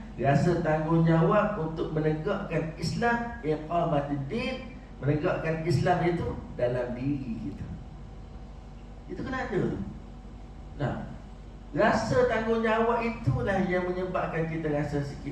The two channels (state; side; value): identical; both; correlation 1.00